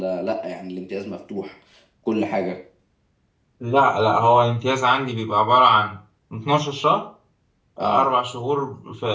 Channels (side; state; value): both; identical; correlation 1.00